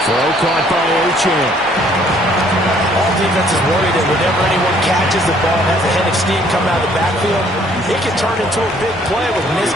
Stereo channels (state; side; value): normal; both; correlation 0.62